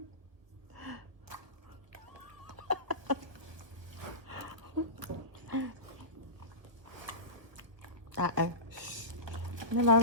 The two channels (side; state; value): left; late; 1.3 ms